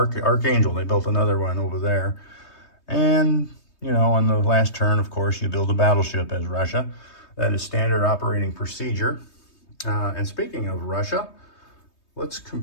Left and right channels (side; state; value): right; late; 3.2 ms